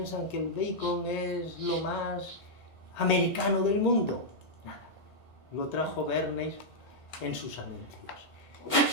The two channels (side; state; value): right; late; 1.9 ms